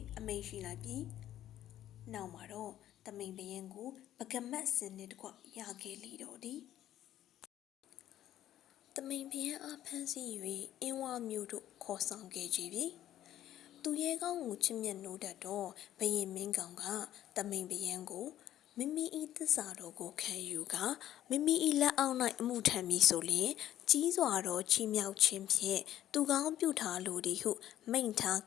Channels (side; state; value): right; quieter; 12.3 dB